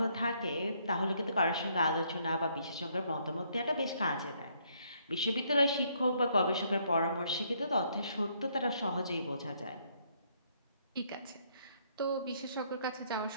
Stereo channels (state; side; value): inverted; both; correlation -0.69